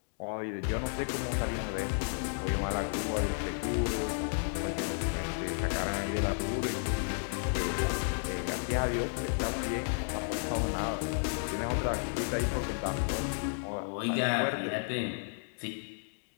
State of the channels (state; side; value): silent; right; digital silence